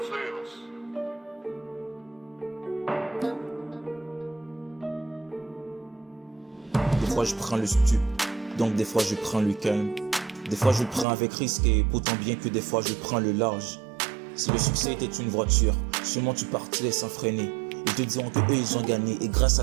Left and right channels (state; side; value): drops out; left; at 11.1 s